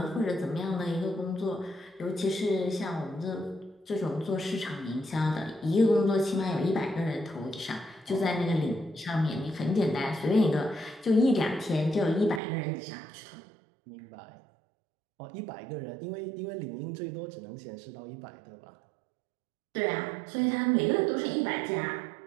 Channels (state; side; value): drops out; left; at 12.4 s